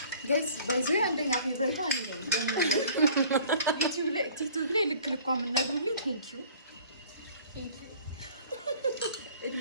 ጋይስ ባይዞ አንደኛ ፌቨሪት አንዴ ነው ቲክቶክ ላይ ልክ የምነግሩልኝ ቴንኪው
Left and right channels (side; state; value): both; inverted; correlation -0.51